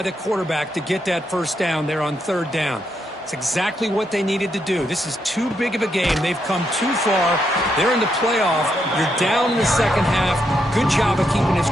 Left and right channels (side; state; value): both; normal; correlation 0.79